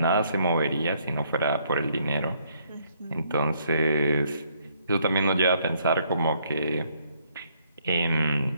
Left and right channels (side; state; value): both; inverted; correlation -0.69